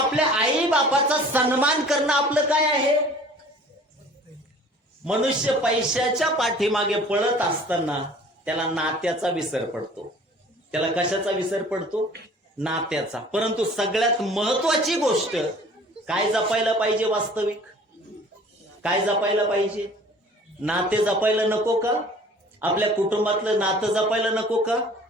आई बापाचा सन्मान करणं आपलं काय आहे? मनुष्य पैशाच्या पाठीमागे पळत असताना त्याला नात्याचा विसर पडतो. त्याला कशाचा विसर पडतो? नात्याचा. परंतु सगळ्यात महत्वाची गोष्ट काय जपायला पाहिजे? वास्तविक काय जपायला पाहिजे? नाते जपायला नको का? आपल्या कुटुंबातलं नातं जपायला नको का?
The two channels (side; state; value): both; normal; correlation 0.49